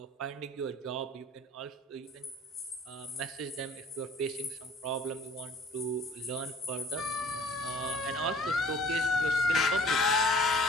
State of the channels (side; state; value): both; normal; correlation 0.51